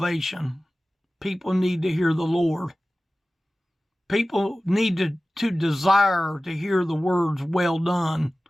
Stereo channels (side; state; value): both; normal; correlation 0.96